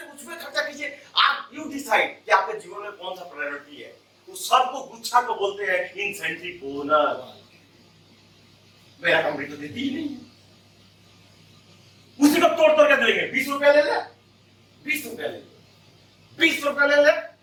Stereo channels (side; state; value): both; identical; correlation 1.00